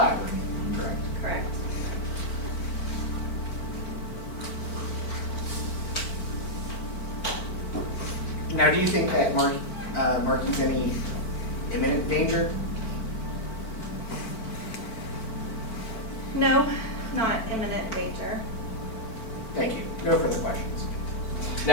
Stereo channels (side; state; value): right; late; 4.5 ms